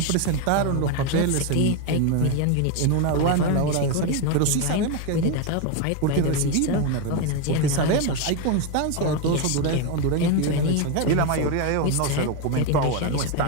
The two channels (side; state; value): both; different; correlation 0.02